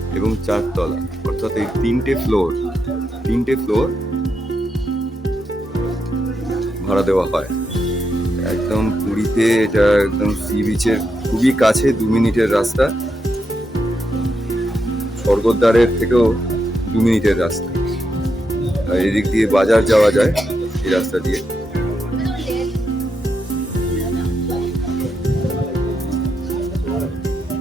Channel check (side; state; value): both; normal; correlation 0.83